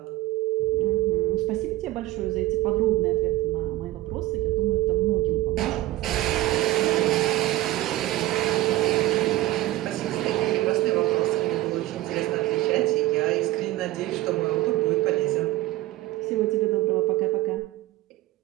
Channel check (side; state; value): left; quieter; 16.6 dB